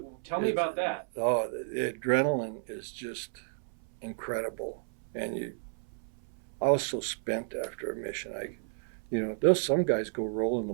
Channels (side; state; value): left; silent; 56 dB below the other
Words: Tell me about that. Oh, the adrenaline is just incredible, and I was so spent after a mission. There's some guys go rolling the